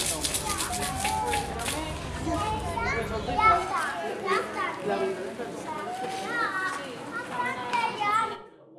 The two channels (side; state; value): both; identical; correlation 1.00